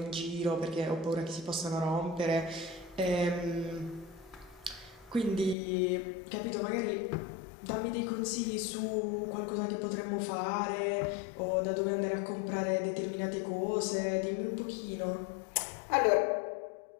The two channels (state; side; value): drops out; right; at 5.6 s